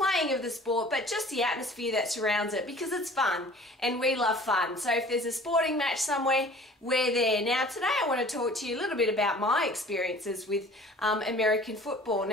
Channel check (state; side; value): normal; both; correlation 0.48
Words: of the sport, but just the atmosphere that surrounds it because it's fun and we love fun. So if there's a sporting match somewhere, we're there. Now today I want to talk to you a little bit about my experiences with American football.